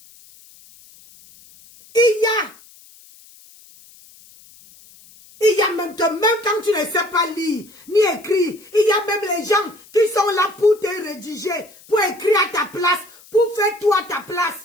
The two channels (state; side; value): noise; left; hiss, 24 dB below the sound